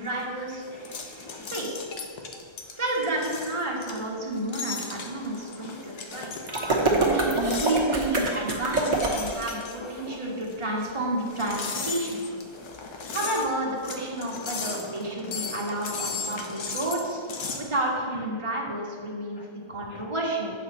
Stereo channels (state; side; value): late; right; 1.3 ms